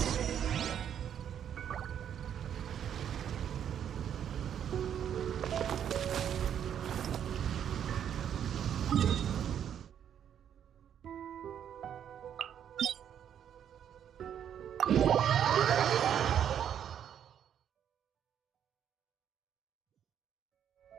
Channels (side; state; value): left; quieter; 9.2 dB